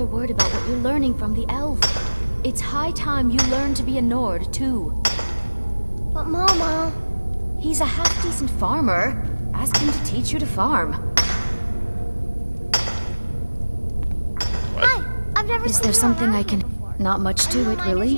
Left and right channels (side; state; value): both; inverted; correlation -1.00